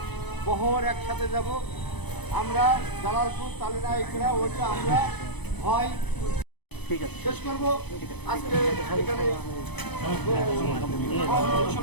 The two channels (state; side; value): late; right; 0.99 ms